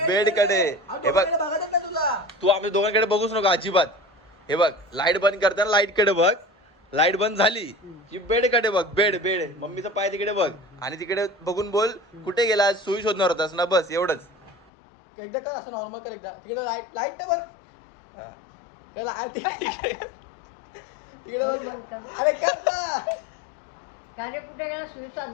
बेडकडे हे बघ. बघायच नाही तुला. तू आमच्या दोघांकडे बघूच नको अजिबात. हे बघ लाईट बंद करताना लाईटकडे बघ. लाईट बंद झाली की बेडकडे बघ. बेड मम्मीचा पाय तिकडे बघ आणि तिकडे बघून बोल कुठे गेला सुई शोधणार होतास ना. बस एवढंच. एकदा कर असं नॉर्मल कर. एकदा तिकडे लाईट बघ. हा. तिकडे अरे कार्य कुठे गेला सुई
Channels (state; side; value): drops out; right; at 14.7 s